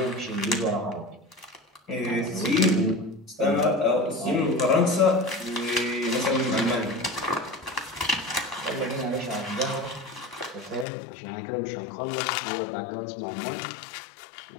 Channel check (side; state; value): right; drops out; at 10.9 s